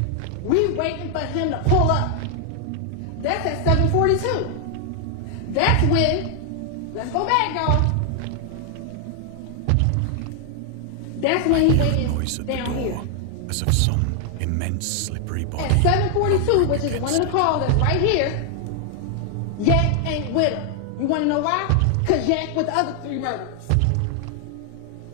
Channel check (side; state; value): both; different; correlation 0.00